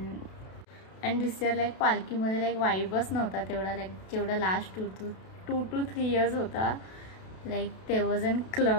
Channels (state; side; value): late; right; 32 ms